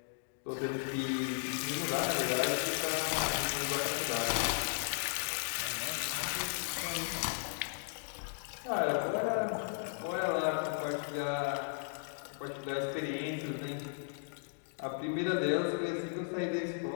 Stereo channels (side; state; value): right; silent; digital silence